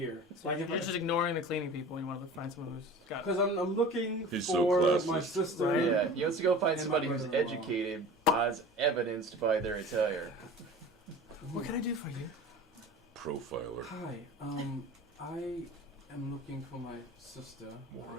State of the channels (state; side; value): normal; both; correlation 0.39